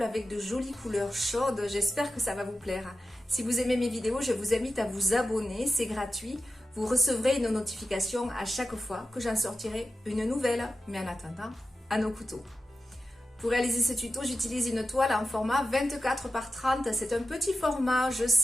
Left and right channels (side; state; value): both; normal; correlation 0.91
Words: avec de jolies couleurs chaudes. J'espère que ça va vous plaire. Si vous aimez mes vidéos, je vous invite à vous abonner, c'est gratuit. Vous recevrez une notification à chaque fois que j'en sortirai une nouvelle. Mais en attendant, à nos couteaux. Pour réaliser ce tuto, j'utilise une toile en format 24 par 30. C'est un petit format, je